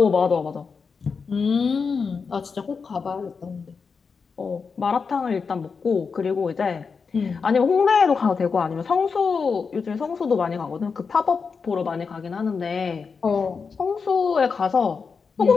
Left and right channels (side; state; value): right; quieter; 5.3 dB